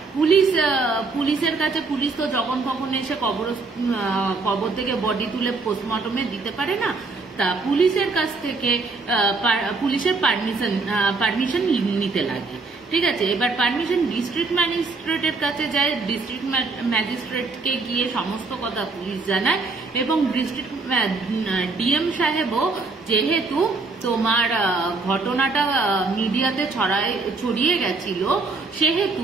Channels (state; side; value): quieter; left; 4.0 dB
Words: পুলিশের কাছে, পুলিশ তো যখন তখন এসে কবর থেকে বডি তুলে পোস্টমর্টমে দিতে পারে না, তা পুলিশের কাছ থেকে পুলিশের পারমিশন নিতে লাগে, ঠিক আছে। এবার পারমিশন ডিস্ট্রিক্ট ম্যাজিস্ট্রেটের কাছে যায়, ডিস্ট্রিক্ট ম্যাজিস্ট্রেটকে গিয়ে সমস্ত কথা পুলিশ জানায় এবং ডিস্ট্রিক্ট ডিএম সাহেবও যেহেতু তোমার ঘটনাটা মিডিয়াতে ছড়িয়ে গেছিল, সেহেতু